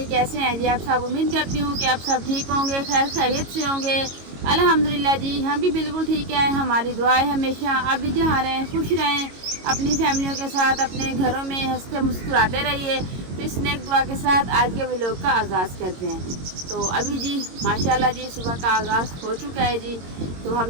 कैसे हैं जी आप सब। उम्मीद करती हूँ कि आप सब ठीक होंगे, खैर खैरियत से होंगे। अल्हम्दुलिल्लाह जी, हम भी बिल्कुल ठीक है। हमारी दुआ है हमेशा आप भी जहाँ रहें खुश रहें, अपनी फैमिलियों के साथ अपने घरों में हंसते मुस्कुराते रहिए। तो इस नेक दुआ के साथ आज के व्लॉग का आगाज़ करते हैं। तो अभी जी माशाल्लाह जी सुबह का आगाज़ हो चुका है जी। तो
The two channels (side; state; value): left; late; 22 ms